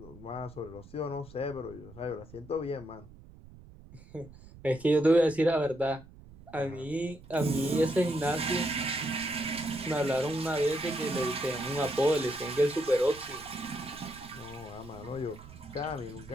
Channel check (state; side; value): noise; right; rumble, 19 dB below the sound